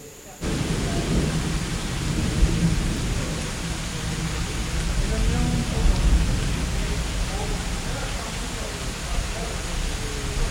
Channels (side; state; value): both; identical; correlation 1.00